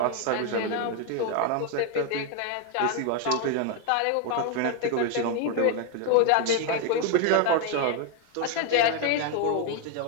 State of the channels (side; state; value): both; different; correlation 0.01